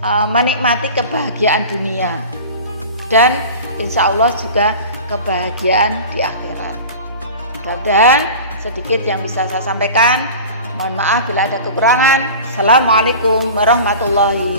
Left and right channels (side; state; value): both; inverted; correlation -0.36